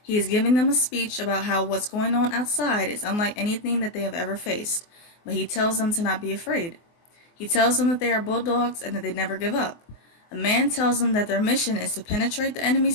He is giving them a speech about how what's going on outside is unlike anything that they have ever faced, but he tells them to not be afraid. He tells them that they are Bulldogs and that they never give up. A man tells them that their mission is to penetrate the enemy's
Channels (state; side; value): late; right; 24 ms